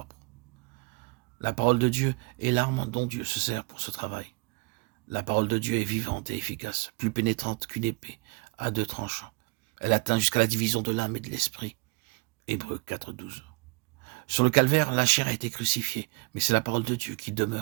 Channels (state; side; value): quieter; left; 27.8 dB